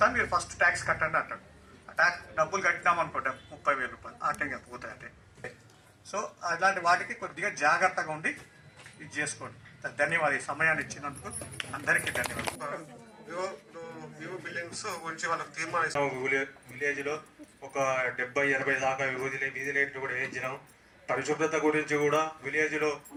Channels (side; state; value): both; identical; correlation 1.00